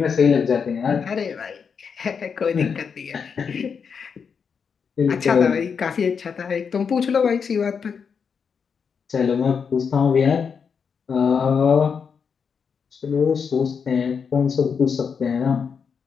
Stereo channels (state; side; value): quieter; right; 6.3 dB